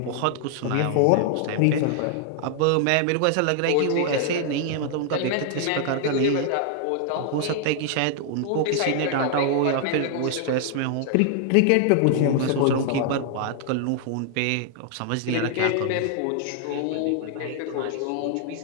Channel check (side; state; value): both; different; correlation 0.00